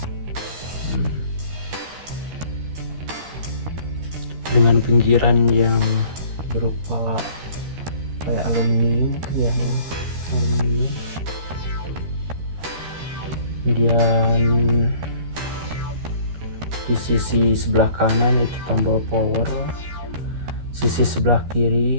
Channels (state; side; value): late; left; 13 ms